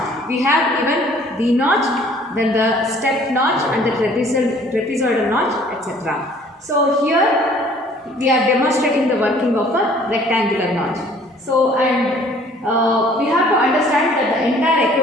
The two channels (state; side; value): normal; both; correlation 0.55